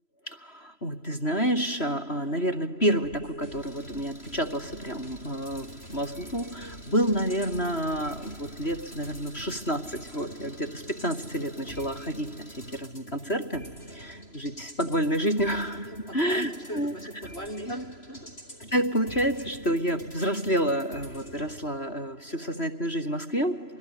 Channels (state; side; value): late; right; 3.0 ms